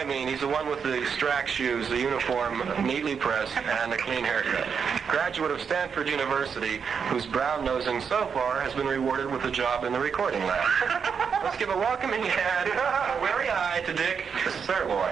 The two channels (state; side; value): quieter; left; 6.5 dB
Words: mean. He's the one with the strack shoes, the uniform neatly pressed, and a clean haircut. Graduate of Stanford University, whose brown nosing so far has been rewarded with a job in the recording lab. Let's give a welcoming hand, a weary eye to Dick